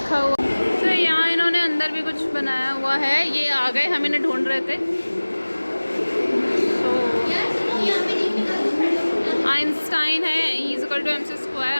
हुआ। तो यहाँ इन्होंने अंदर भी कुछ बनाया हुआ है। ये आ गए, हम इन्हें ढूंढ रहे थे। आइंस्टाइन है, E = mc²,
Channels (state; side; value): inverted; both; correlation -1.00